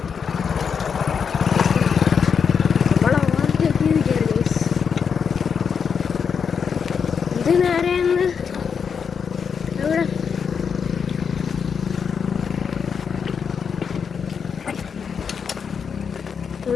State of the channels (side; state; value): right; quieter; 6.5 dB